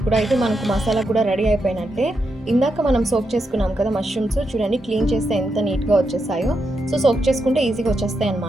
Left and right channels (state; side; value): normal; both; correlation 0.84